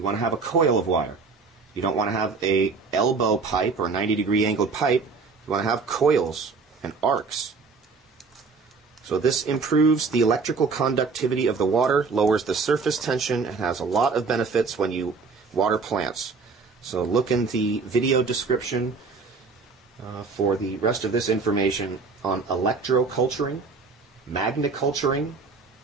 want to have a coil of wire. You don't want to have a elbow pipe or 90-degree angled pipe. You want to have coils and arcs. So this improves the electrical conductivity of the water, lowers the surface tension, and has a lot of benefits when you water plants. So look in the video description for the rest of this information on electroculturing, magniculturing,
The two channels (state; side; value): quieter; left; 4.6 dB